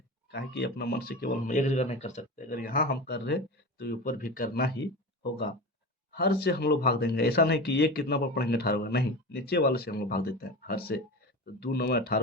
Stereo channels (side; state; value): both; normal; correlation 0.28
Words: काहे कि अपना मन से केवल हम एक जगह नहीं कर सकते, अगर यहाँ हम कर रहे तो ऊपर भी करना ही होगा। हर से हम लोग भाग देंगे, ऐसा नहीं कि ये कितना बार पढ़ेंगे 18 बार, नहीं, नीचे वाले से हम लोग भाग देते हैं हर से। तो 2 9 18